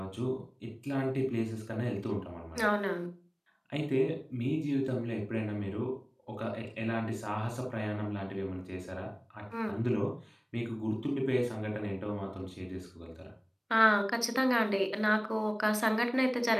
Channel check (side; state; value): both; identical; correlation 1.00